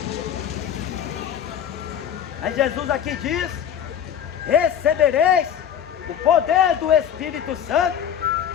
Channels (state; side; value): quieter; right; 9.1 dB